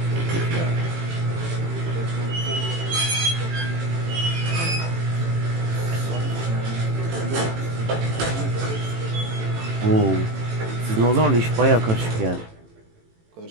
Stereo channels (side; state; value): left; late; 18 ms